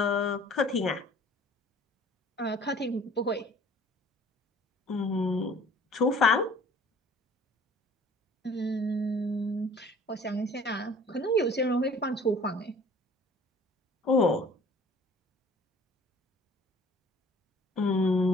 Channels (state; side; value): normal; both; correlation 0.51